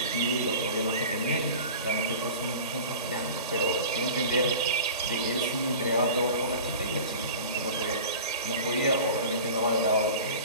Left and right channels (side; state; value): both; inverted; correlation -0.37